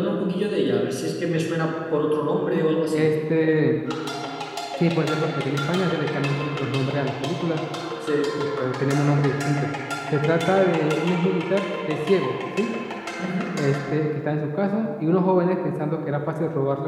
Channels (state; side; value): identical; both; correlation 1.00